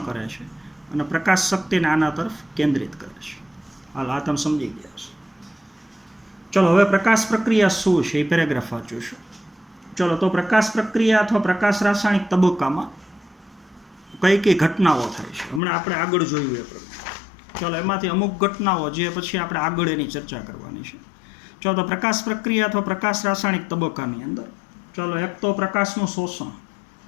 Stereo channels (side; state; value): right; drops out; at 15.6 s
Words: કરે છે અને પ્રકાશ શક્તિને આના તરફ કેન્દ્રિત કરે છે. હાલ, આ તમે સમજી ગયા છો. ચલો, હવે પ્રકાશ પ્રક્રિયા શું છે એ પેરેગ્રાફ વાંચું છું. ચલો, તો પ્રકાશ પ્રક્રિયા અથવા પ્રકાશ રાસાયણિક તબક્કામાં કઈ કઈ ઘટનાઓ થાય છે હમણાં આપણે આગળ જોયું એ પ્રમાણે. ચલો, એમાંથી અમુક ઘટનાઓ જે પછી આપણે આગળ એની ચર્ચા કરવાની છે. ચલો, તો પ્રકાશ પ્રક્રિયા અથવા પ્રકાશ રાસાયણિક તબક્કાની અંદર ચલો, એક તો પ્રકાશનું શોષણ,